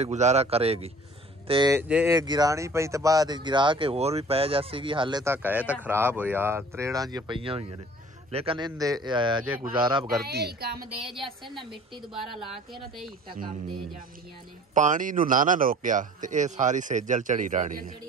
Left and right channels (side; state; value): both; normal; correlation 0.48